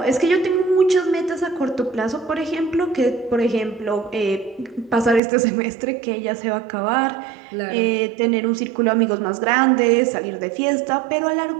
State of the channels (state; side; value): drops out; left; at 5.2 s